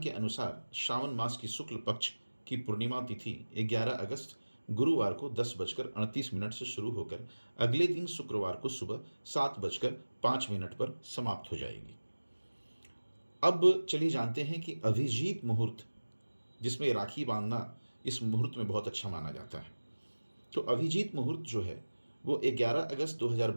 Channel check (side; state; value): both; inverted; correlation -1.00